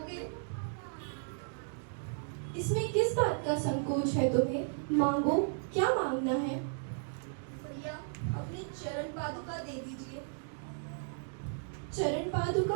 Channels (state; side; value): silent; left; digital silence